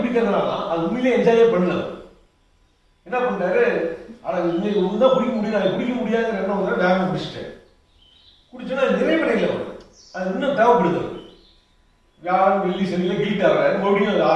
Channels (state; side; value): identical; both; correlation 1.00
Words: அது உண்மையிலே என்ஜாயே பண்ணல. என்ன பண்றாரு, இன்னைக்கு ஒன்றுதான் குடிக்க முடியும், அதை குடிக்க முடியாதுங்கிற எண்ணம் வந்து வேகமாக குடிச்சிட்டேன். குடிச்சோன்னா நிறைவடையில் வரும், அது இன்னும் தேவைப்படுது. வியாழன் வெள்ளி சனியில் கில்ட் ஆகிறாரு, மறுபடியும் அது